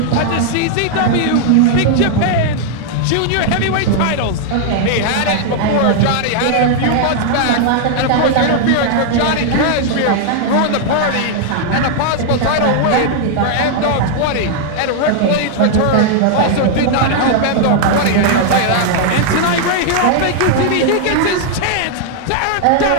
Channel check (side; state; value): both; different; correlation 0.00